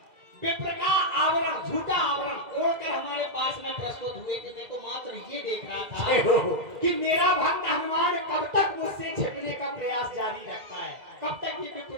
विप्र का आवरण, झूठा आवरण ओढ़कर हमारे पास में प्रस्तुत हुए थे। मैं तो मात्र ये देख रहा था कि मेरा भक्त हनुमान कब तक मुझसे छिपने का प्रयास जारी रखता है, कब तक ये विप्र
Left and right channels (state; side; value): late; left; 2.4 ms